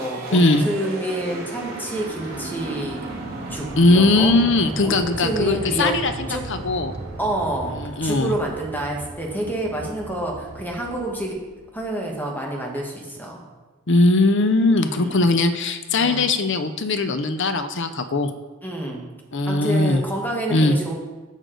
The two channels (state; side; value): normal; both; correlation 0.49